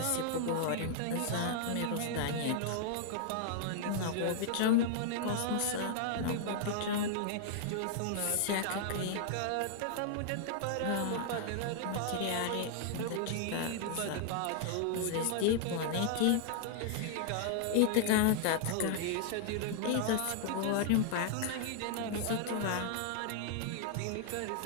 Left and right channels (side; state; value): both; different; correlation -0.01